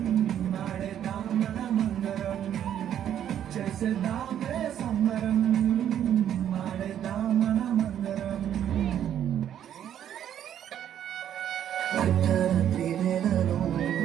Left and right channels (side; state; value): left; quieter; 10.2 dB